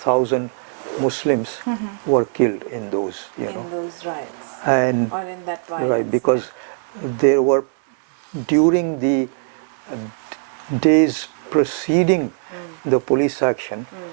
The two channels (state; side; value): silent; left; digital silence